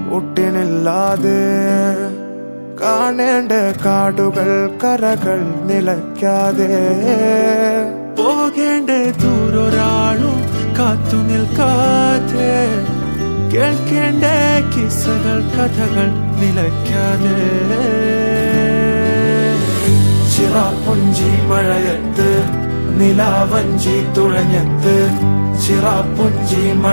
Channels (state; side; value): inverted; both; correlation -1.00